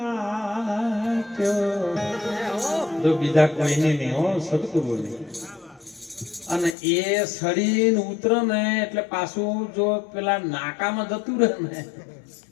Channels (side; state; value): right; drops out; at 6.8 s